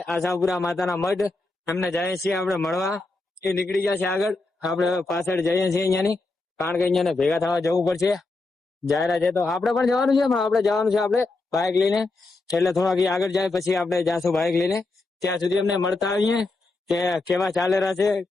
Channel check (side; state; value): right; quieter; 3.3 dB